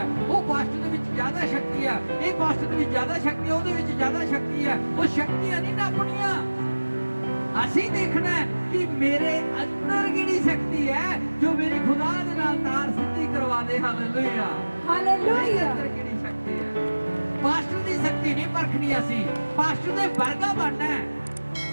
ਉਹ ਪਾਸਟਰ ਦੇ ਵਿੱਚ ਜ਼ਿਆਦਾ ਸ਼ਕਤੀ ਆ, ਇਹ ਪਾਸਟਰ ਦੇ ਵਿੱਚ ਜ਼ਿਆਦਾ ਸ਼ਕਤੀ ਆ, ਉਹਦੇ ਵਿੱਚ ਜ਼ਿਆਦਾ ਸ਼ਕਤੀ ਆ। ਉਹ ਸ਼ਕਤੀਆਂ ਨਹੀਂ ਨਾਪਣੀਆਂ। ਅਸੀਂ ਦੇਖਣਾ ਹੈ ਕਿ ਮੇਰੇ ਅੰਦਰ ਕਿਹੜੀ ਸ਼ਕਤੀ ਹੈ ਜੋ ਮੇਰੀ ਖੁਦਾ ਦੇ ਨਾਲ ਤਾਰ ਸਿੱਧੀ ਕਰਵਾ ਦੇ। Hallelujah, hallelujah. ਅੰਦਰ ਕਿਹੜੀ ਸ਼ਕਤੀ ਹੈ? ਪਾਸਟਰ ਦੀ ਸ਼ਕਤੀ ਨਹੀਂ ਪਰਖਣੀ ਅਸੀਂ, ਪਾਸਟਰ ਦੇ ਵਰਗਾ ਬਣਨਾ ਹੈ।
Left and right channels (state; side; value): inverted; both; correlation -1.00